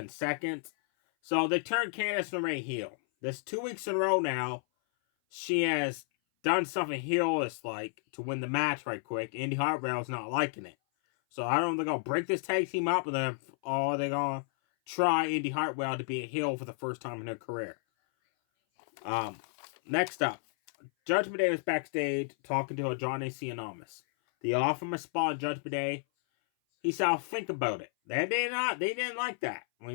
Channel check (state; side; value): silent; right; 56 dB below the other